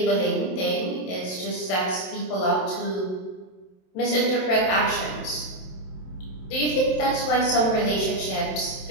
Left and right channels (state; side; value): late; right; 27 ms